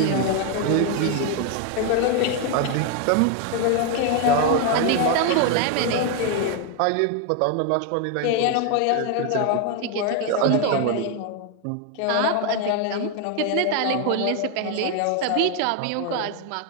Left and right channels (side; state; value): both; different; correlation 0.01